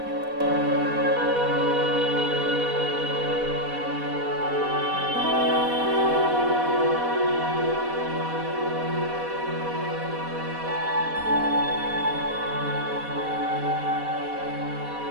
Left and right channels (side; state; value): left; late; 4.1 ms